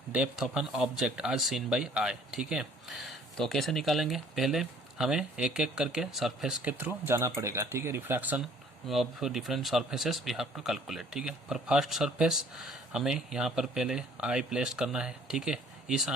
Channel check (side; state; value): both; normal; correlation 0.56